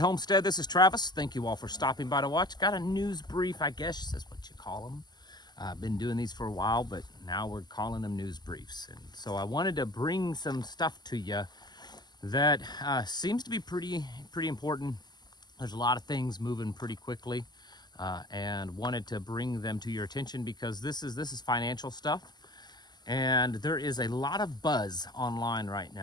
This is Travis. Thank you all for stopping by to watch. Got a news brief, I guess is what you call them. I've been doing these for a while, but now we're calling them news briefs. And so I wanted to bring some stuff to you that seems to be pretty important. There's a lot of things moving pretty quickly, and wanted to bring them to your attention because this is financial stuff, and there is a lot of buzz online right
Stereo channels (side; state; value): right; late; 0.21 ms